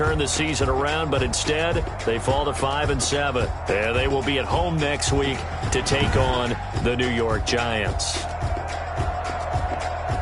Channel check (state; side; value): identical; both; correlation 1.00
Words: the season around, but instead, they fall to 5-7. And they will be at home next week to take on the New York Giants.